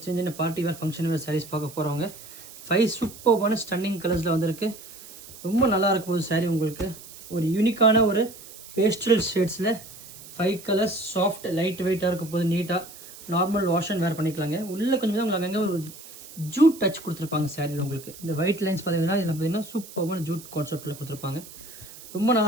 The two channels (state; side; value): noise; right; hiss, 17 dB below the sound